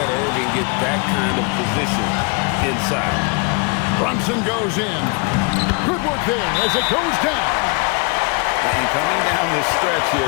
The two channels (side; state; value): right; quieter; 32.7 dB